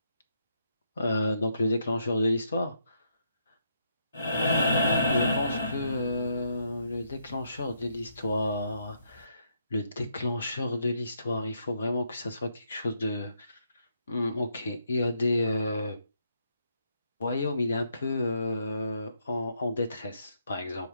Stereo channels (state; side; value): inverted; both; correlation -0.76